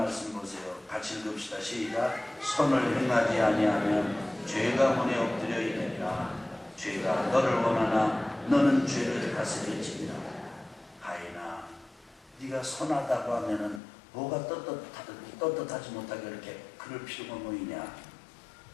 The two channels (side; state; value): right; drops out; at 13.8 s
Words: 보세요. 같이 읽읍시다. 시작. 선을 행하지 아니하면 죄가 문에 엎드려 있느니라. 죄가 너를 원하나 너는 죄를 다스릴지니라. 가인아, 네가 선하다고 하면은 뭐가 떳떳하지 못하게 이렇게 그럴 필요가 뭐 있냐.